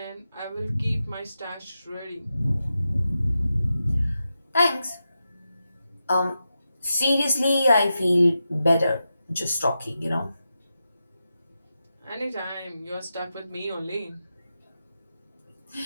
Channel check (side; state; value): both; inverted; correlation -0.89